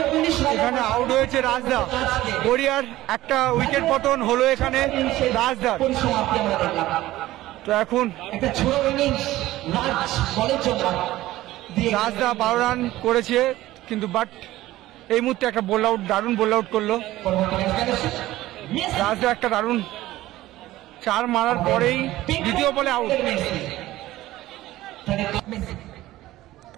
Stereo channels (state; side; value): quieter; left; 16.2 dB